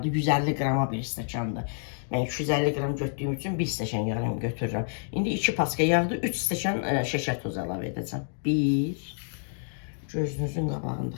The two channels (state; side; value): silent; right; 59 dB below the other